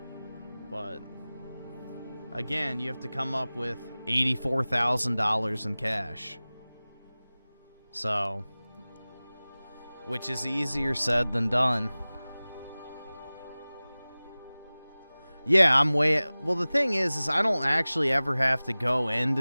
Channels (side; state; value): both; inverted; correlation -0.99